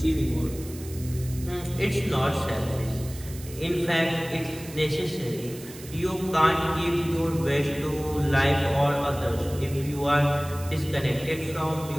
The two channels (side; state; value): right; noise; hiss, 16 dB below the sound